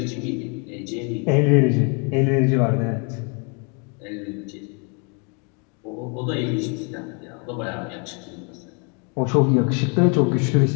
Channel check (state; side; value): quieter; right; 35.8 dB